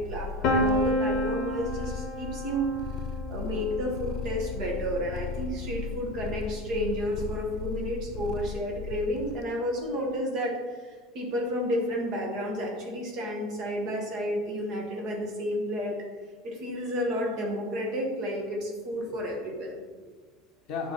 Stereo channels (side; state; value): both; normal; correlation 0.32